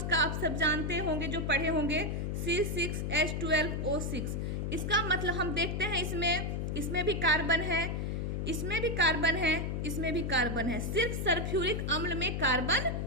का आप सब जानते होंगे, जो पढ़े होंगे, C6H12O6। इसका मतलब हम देखते हैं इसमें भी कार्बन है, इसमें भी कार्बन है, इसमें भी कार्बन है, सिर्फ सल्फ्यूरिक अम्ल में कार्बन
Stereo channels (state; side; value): noise; left; hum, 1 dB below the sound